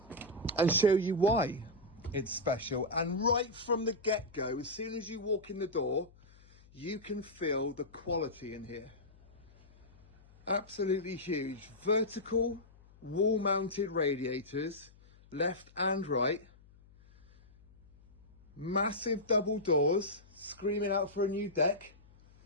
and show you why it's special. And right from the get-go, as soon as you walk in the door, you can feel the quality in here. Absolutely huge. Vertical wall-mounted radiators, left and right. Massive double doors, screaming out for a new deck.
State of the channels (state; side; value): noise; left; hum, 26 dB below the sound